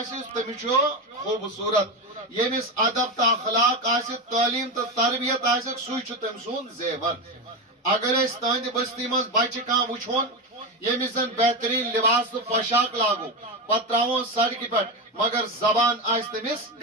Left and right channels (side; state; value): both; normal; correlation 0.16